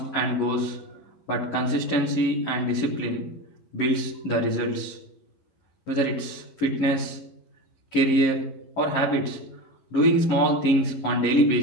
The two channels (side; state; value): right; late; 11 ms